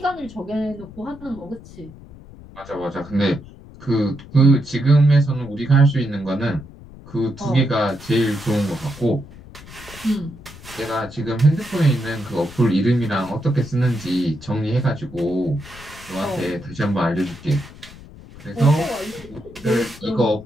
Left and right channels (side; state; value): left; noise; rumble, 18 dB below the sound